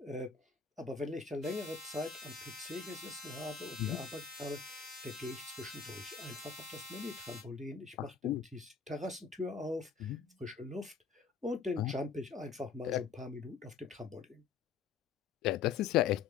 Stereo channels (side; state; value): right; quieter; 6.0 dB